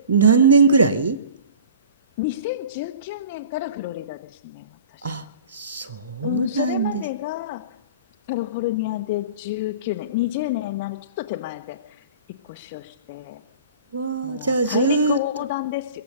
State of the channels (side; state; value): both; inverted; correlation -0.42